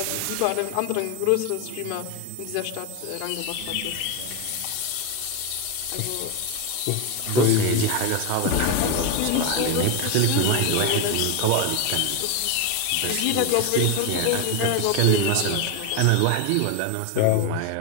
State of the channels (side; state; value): both; different; correlation 0.02